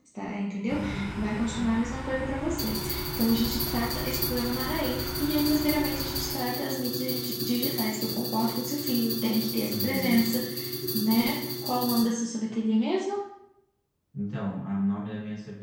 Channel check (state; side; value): identical; both; correlation 1.00